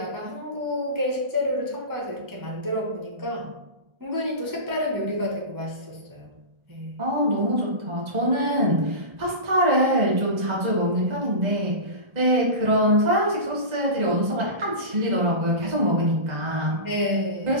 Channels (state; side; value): late; left; 1.3 ms